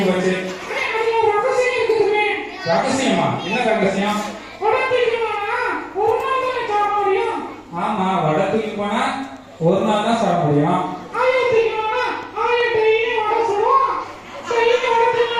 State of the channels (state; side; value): identical; both; correlation 1.00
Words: போச்சு. ரகசியமா? என்ன ரகசியம்? ஆமா, வடை தூக்கி போனா ஒரு நாள் தான் சாப்பிட முடியும்.